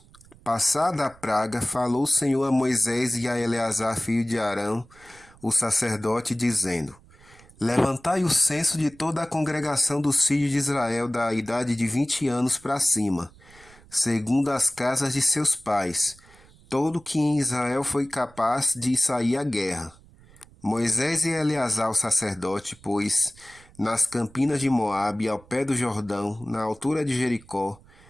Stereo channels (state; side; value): noise; right; rumble, 26 dB below the sound